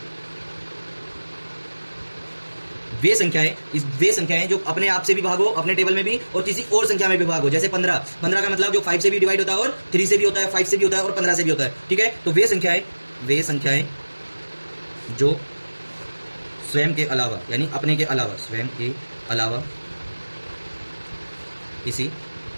वे संख्याएं जो अपने आप से भी भागो, अपने टेबल में भी, और किसी और संख्या में भी भागो। जैसे 15 का मतलब जो 5 से भी डिवाइड होता है और 3 से भी होता है, 5 से भी होता है और 15 से भी होता है, ठीक है। तो वे संख्याएं जो स्वयं के अलावा, यानी अपने के अलावा, स्वयं के अलावा किसी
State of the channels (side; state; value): both; inverted; correlation -1.00